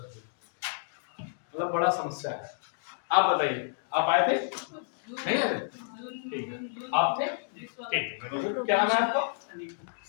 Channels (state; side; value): silent; right; digital silence